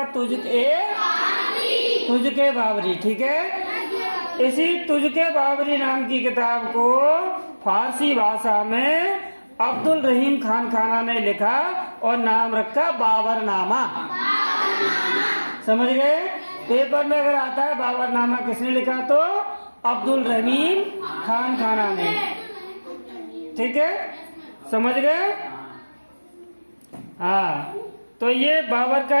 तुझ-ए-बाबरी। ठीक है, इसी तुझ-ए-बाबरी नाम की किताब को फारसी भाषा में अब्दुल रहीम खान खाना ने लिखा और नाम रखा बाबरनामा। समझ गए? पेपर में अगर आता है बाबरनामा किसने लिखा, तो अब्दुल रहीम खान खाना ने। ठीक है, समझ गए? हाँ, तो ये बाबर का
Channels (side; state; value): both; inverted; correlation -1.00